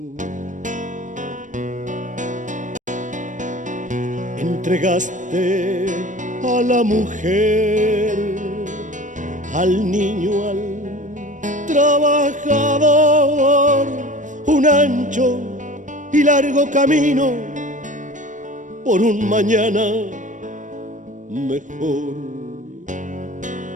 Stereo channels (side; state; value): left; late; 0.37 ms